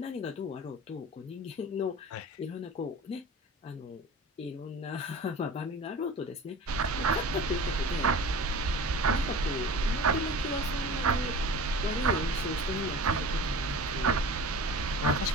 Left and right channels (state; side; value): normal; both; correlation 0.37